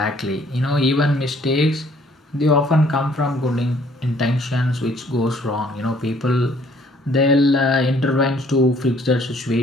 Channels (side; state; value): both; normal; correlation 0.61